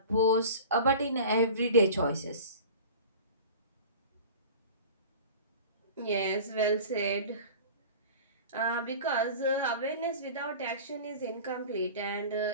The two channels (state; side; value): inverted; both; correlation -0.38